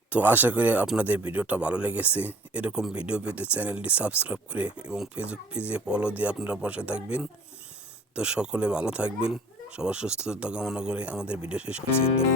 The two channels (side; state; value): both; normal; correlation 0.48